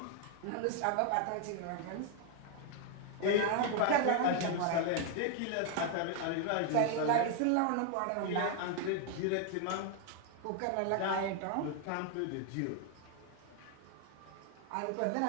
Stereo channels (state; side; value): different; both; correlation 0.00